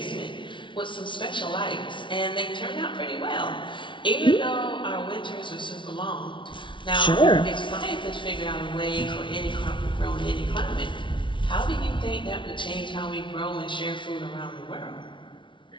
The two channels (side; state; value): right; late; 0.24 ms